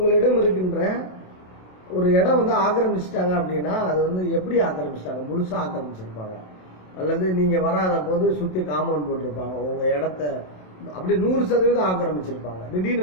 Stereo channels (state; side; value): late; right; 27 ms